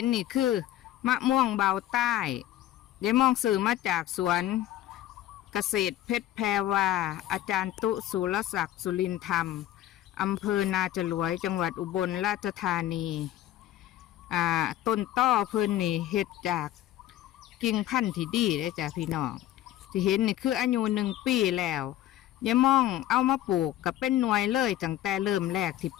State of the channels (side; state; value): right; quieter; 13.3 dB